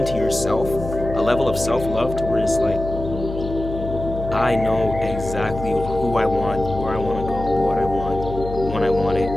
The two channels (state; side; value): noise; left; hum, 8 dB below the sound